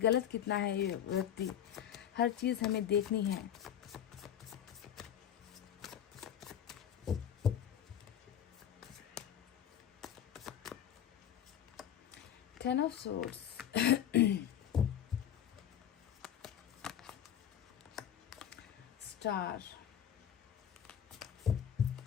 कितना है ये व्यक्ति, हर चीज हमें देखनी है। Ten of swords, star,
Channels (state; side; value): quieter; right; 9.7 dB